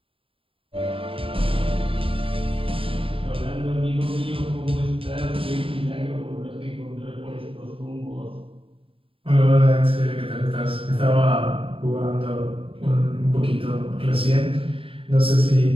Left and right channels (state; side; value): late; left; 0.26 ms